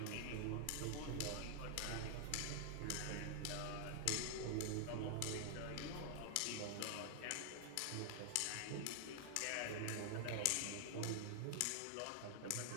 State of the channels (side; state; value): both; different; correlation 0.00